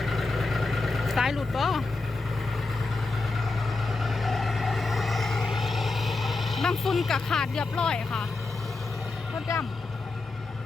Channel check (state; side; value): quieter; right; 3.5 dB